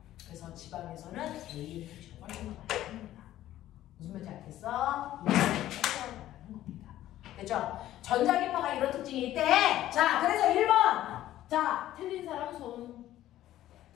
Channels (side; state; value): right; quieter; 13.6 dB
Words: 그래서 지방에서는 AM 표시가 훨씬 더 많이 씁니다. 무슨 말인지 알겠어? 이거는 말하는 겁니다. 됐죠? 전자기파가 이런 특징이 있대. 자, 그래서 1번. 자, 틀린 사람 손.